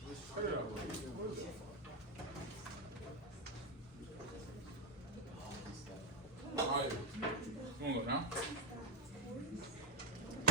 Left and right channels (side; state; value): both; normal; correlation 0.14